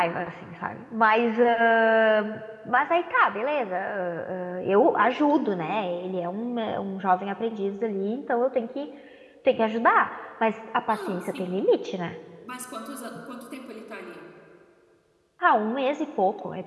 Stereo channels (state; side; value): identical; both; correlation 1.00